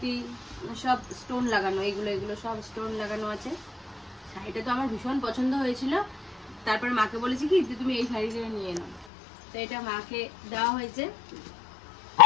সব স্টোন লাগানো, এগুলো সব স্টোন লাগানো আছে। শাড়িটা তো আমার ভীষণ পছন্দ হয়েছিল, তারপরে মাকে বলেছি কি যে তুমি এই শাড়িটা নিয়ে নাও, তো এটা মাকে দেওয়া হয়েছে।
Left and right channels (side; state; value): right; drops out; at 9.1 s